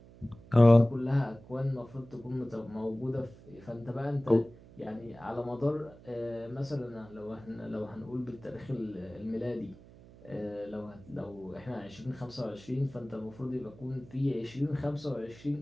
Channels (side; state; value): right; noise; hum, 21 dB below the sound